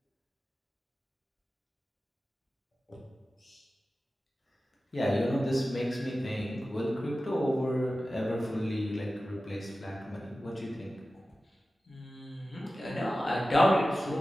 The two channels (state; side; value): normal; both; correlation 0.95